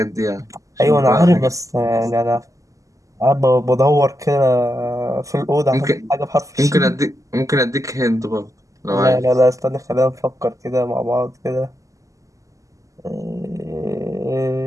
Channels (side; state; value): left; late; 0.16 ms